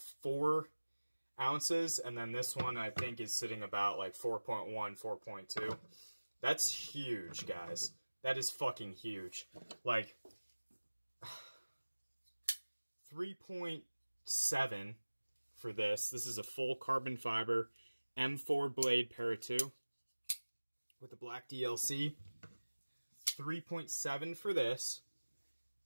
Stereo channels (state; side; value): inverted; both; correlation -1.00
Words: ounces. And then this one, I think, is sitting about like 4.1, 4.2. That's huge, guys. That is fucking huge. Like, 3.7 for this. This is a full carbon fiber M4 blade para 2 with the black DLC. 3.7 for this.